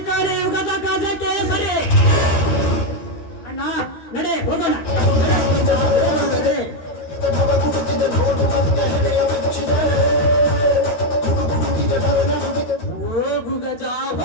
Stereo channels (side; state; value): right; late; 13 ms